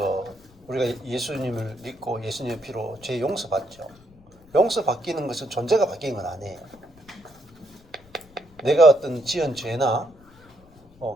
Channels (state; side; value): noise; left; rumble, 26 dB below the sound